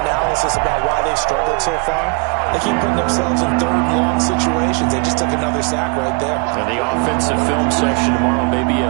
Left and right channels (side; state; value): left; quieter; 32.8 dB